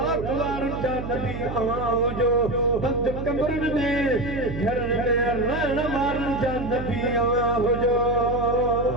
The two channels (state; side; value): noise; right; hum, 7 dB below the sound